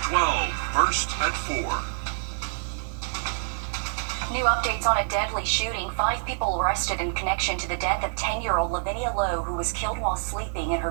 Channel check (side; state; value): left; silent; digital silence